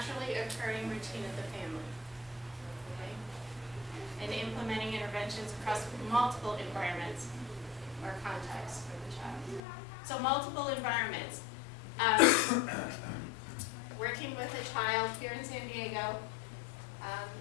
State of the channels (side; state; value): right; drops out; at 9.6 s